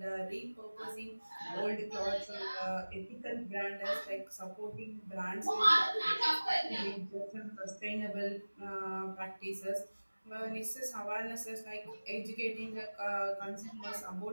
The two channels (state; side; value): inverted; both; correlation -1.00